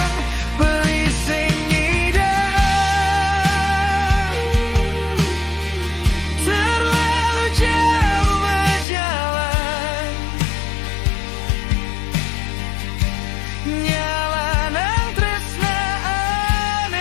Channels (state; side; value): drops out; right; at 8.8 s